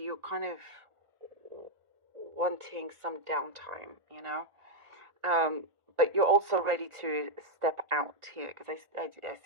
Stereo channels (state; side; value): late; left; 1.4 ms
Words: kind of wanting some downtime, but you're also ready to step out here, because I